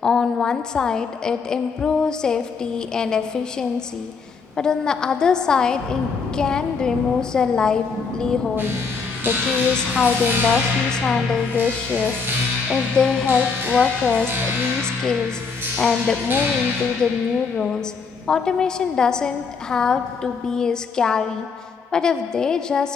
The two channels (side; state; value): right; quieter; 5.2 dB